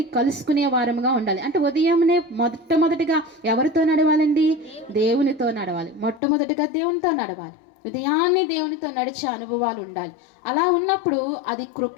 కలుసుకునే వారముగా ఉండాలి. అంటే ఉదయమునే మొట్టమొదటిగా ఎవరితో నడవాలండి? దేవునితో నడవాలి. మొట్టమొదటిగా దేవునితో నడవాలి. ఉదయాన్నే దేవునితో నడిచే అనుభవాలు ఉండాలి. అలా ఉన్నప్పుడు అది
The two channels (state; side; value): drops out; right; at 6.2 s